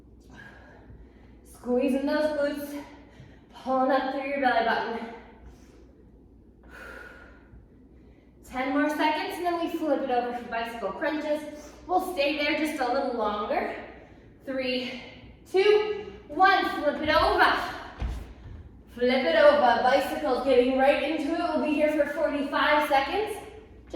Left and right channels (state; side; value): identical; both; correlation 1.00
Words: Squeezing those glutes, pulling up through your belly button. 10 more seconds, and then we flip it over for bicycle crunches. We'll stay there just a little longer. 3, 2, 1, flip it over. Flip it over, bicycle getting right into it. We'll be here for 45 seconds,